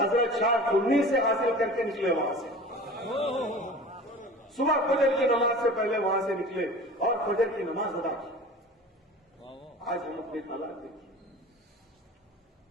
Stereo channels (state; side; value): normal; both; correlation 0.39